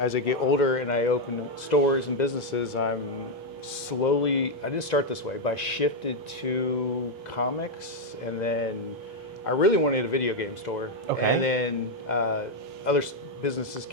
I get older and I open stores and businesses, I'm slowly. I didn't start this way, but I shifted to comics, and then I really wanted a video game store. Okay. And then other businesses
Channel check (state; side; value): normal; both; correlation 0.02